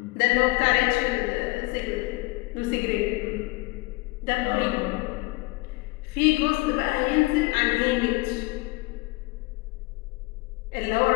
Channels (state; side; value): quieter; right; 23.9 dB